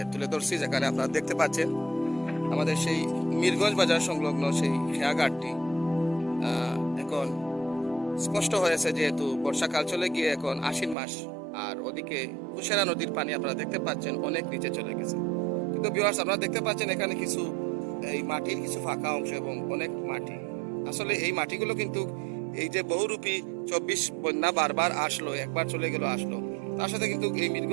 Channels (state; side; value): drops out; left; at 11.0 s